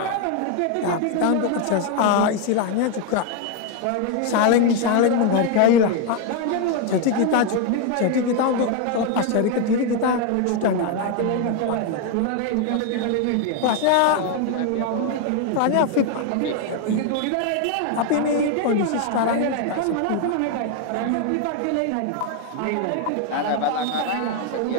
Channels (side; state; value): both; different; correlation 0.01